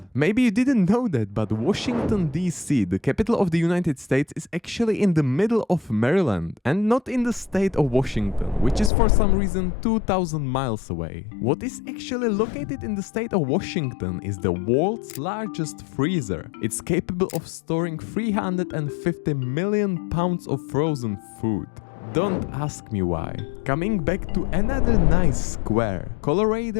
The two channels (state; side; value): drops out; right; at 8.9 s